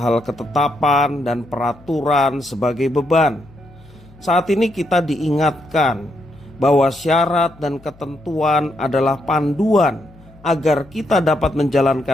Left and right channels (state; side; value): noise; left; hum, 25 dB below the sound